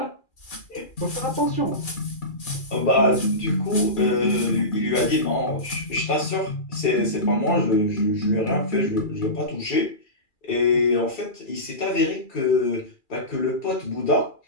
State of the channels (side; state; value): right; late; 2.4 ms